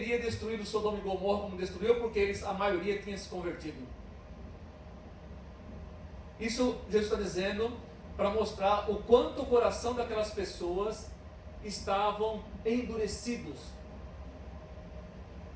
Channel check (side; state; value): both; identical; correlation 1.00